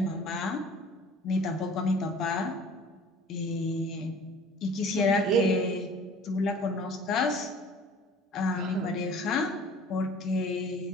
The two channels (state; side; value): normal; both; correlation 0.48